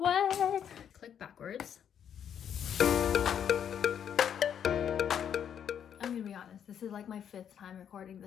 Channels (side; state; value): right; quieter; 8.8 dB